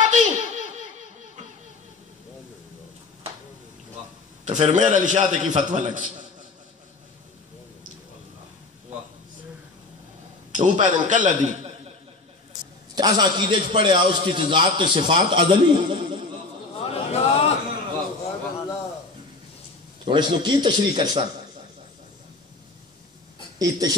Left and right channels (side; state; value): right; quieter; 3.5 dB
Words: تو پھر میرا علی شاہ کی فتوہ لگ سے وہ پیدن کل دی ایسا عقیدے چ پڑے اس کی ذات تے صفات ازلی، تو اس نے کی تشریح کر سکتا، یہ